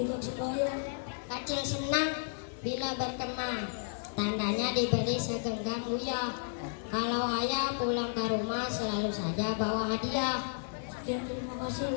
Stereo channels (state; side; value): silent; right; digital silence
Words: sebayang. Kecil senang bila berkembang, tandanya diberi segenggam uyah. Kalau ayah pulang ke rumah selalu saja bawa hadiah. Sekian, terima kasih.